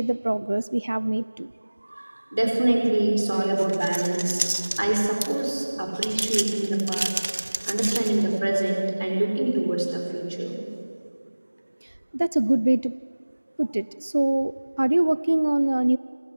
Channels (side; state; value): both; inverted; correlation -1.00